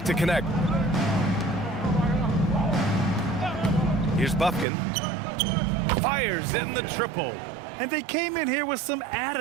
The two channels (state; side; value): drops out; left; at 4.7 s